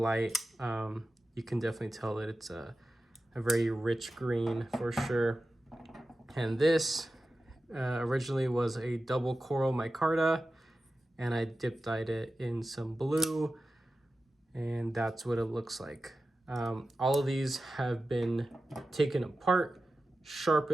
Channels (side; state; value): both; normal; correlation 0.93